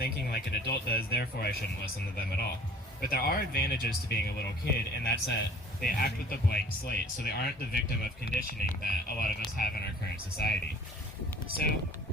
like an adult does, therefore I shouldn't listen to them at all. But there are advantages to being a little kid, and that's that they act with a blank slate, so they aren't the victim of conditioning that a lot of us have in our current society. So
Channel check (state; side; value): normal; both; correlation 0.50